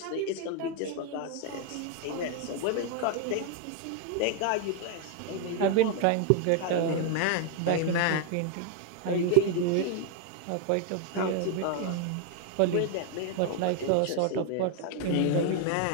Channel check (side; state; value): both; different; correlation 0.01